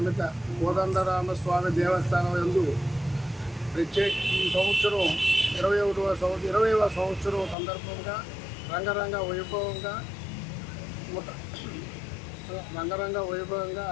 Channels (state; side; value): drops out; right; at 7.6 s